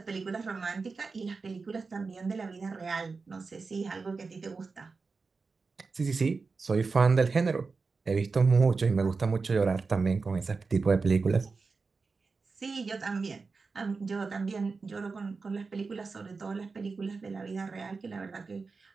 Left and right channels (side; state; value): left; quieter; 4.4 dB